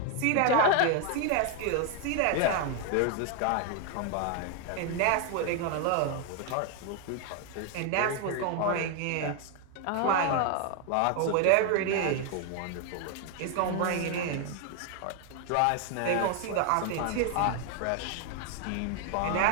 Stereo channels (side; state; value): both; different; correlation 0.01